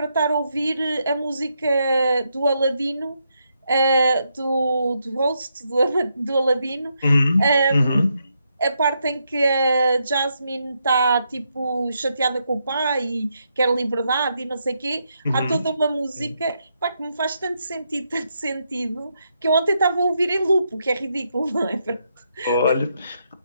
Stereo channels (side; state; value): both; inverted; correlation -0.80